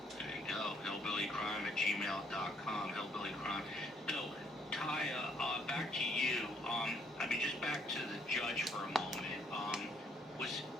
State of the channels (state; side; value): normal; both; correlation 0.67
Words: There you go, hillbillycrime@gmail.com, hillbillycrime. So, Taya, back to you. Just back to the judge for a moment.